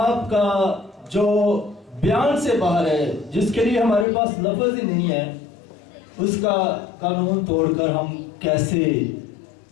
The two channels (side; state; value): right; drops out; at 4.0 s